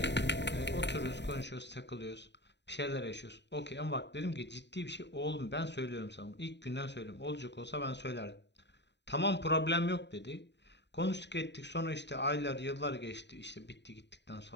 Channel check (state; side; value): late; right; 0.51 ms